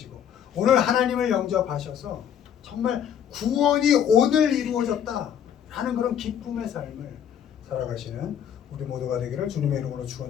오늘 하나님을 영접하셔서 정말 구원이 오늘 이루어졌다 하는 그런 기쁨의 삶을 살아가시는 우리 모두가 되기를 주님의 이름으로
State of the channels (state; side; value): quieter; right; 9.0 dB